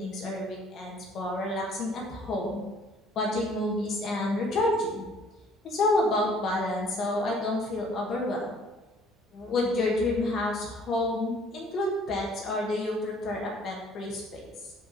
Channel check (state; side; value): normal; both; correlation 0.57